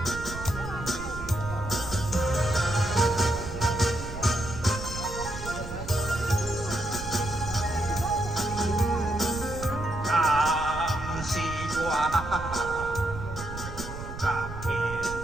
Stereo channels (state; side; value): noise; right; rumble, 9 dB below the sound